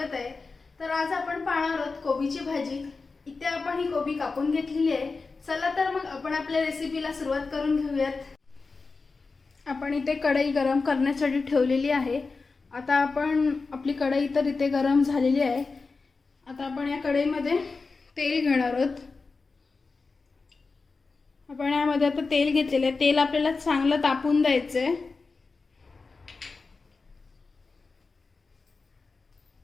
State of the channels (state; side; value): quieter; right; 4.2 dB